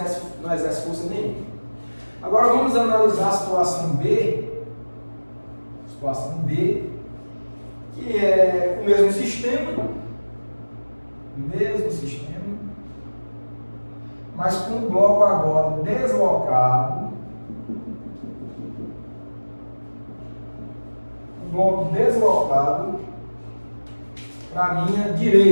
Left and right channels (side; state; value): both; inverted; correlation -1.00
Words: força nenhuma. Agora vamos analisar a situação B. Situação B, que é o mesmo sistema, mas com o bloco agora deslocado. O bloco deslocado para a minha